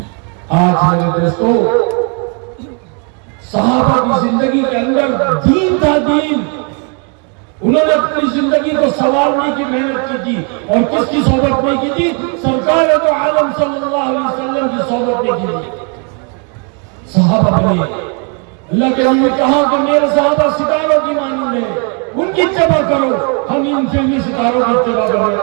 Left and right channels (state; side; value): quieter; left; 36.4 dB